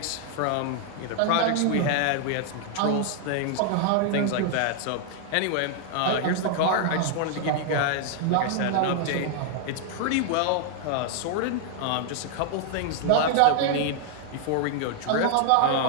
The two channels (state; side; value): different; both; correlation 0.00